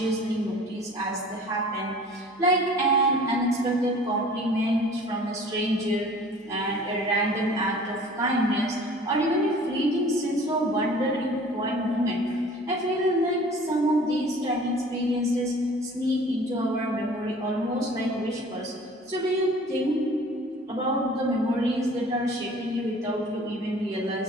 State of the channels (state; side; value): normal; both; correlation 0.47